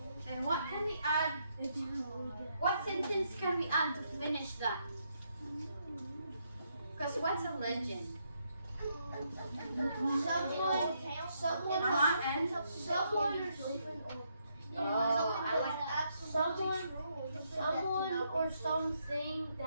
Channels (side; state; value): both; inverted; correlation -0.76